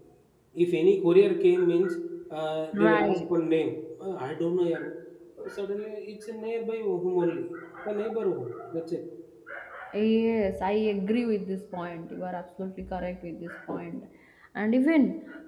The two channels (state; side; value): identical; both; correlation 1.00